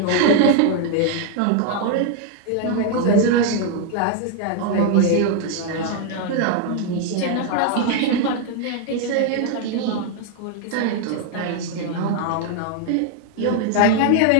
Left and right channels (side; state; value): both; different; correlation 0.00